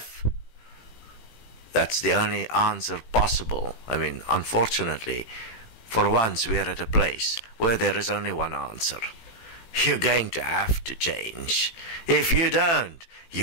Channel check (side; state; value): right; late; 18 ms